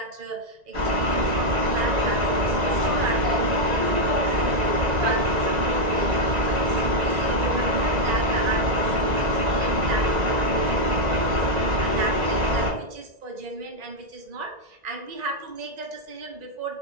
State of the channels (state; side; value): late; left; 1.9 ms